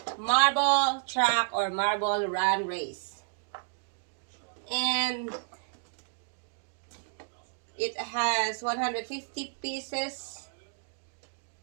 marble track or marble run race. And it has 150 pieces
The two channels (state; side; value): silent; left; digital silence